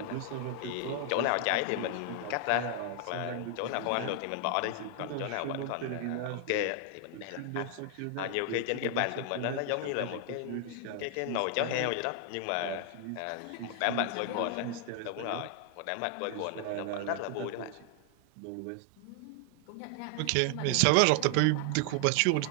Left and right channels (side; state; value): both; different; correlation 0.00